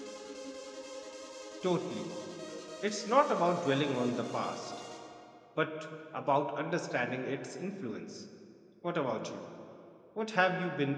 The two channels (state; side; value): identical; both; correlation 1.00